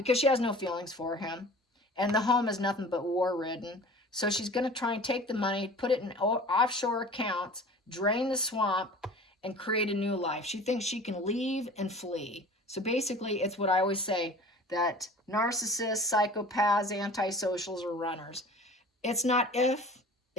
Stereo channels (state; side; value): normal; both; correlation 0.42